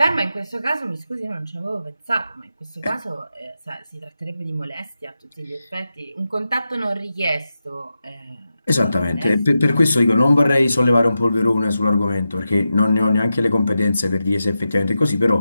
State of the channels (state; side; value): inverted; both; correlation -0.90